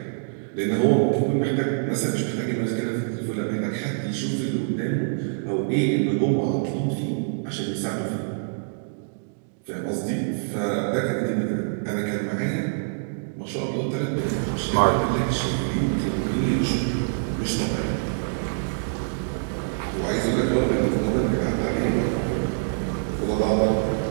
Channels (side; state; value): left; silent; digital silence